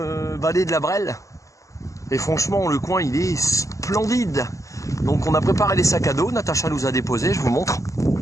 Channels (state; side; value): late; right; 0.16 ms